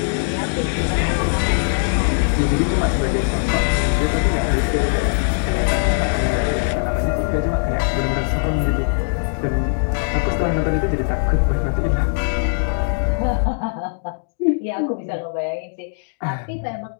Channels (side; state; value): right; silent; digital silence